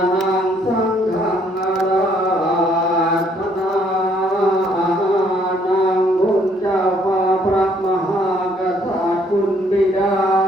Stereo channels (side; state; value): both; normal; correlation 0.66